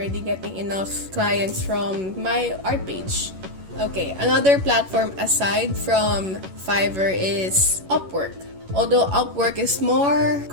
getting enough clients from my art page. Okay, another platform aside from Fiverr is Upwork. Although Upwork is more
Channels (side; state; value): left; late; 11 ms